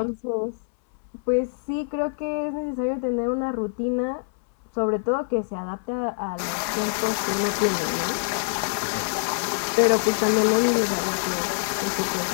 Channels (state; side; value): silent; right; 62 dB below the other